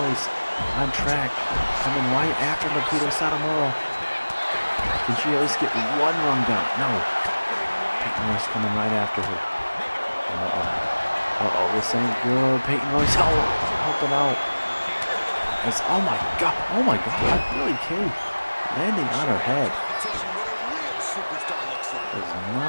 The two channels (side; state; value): both; inverted; correlation -1.00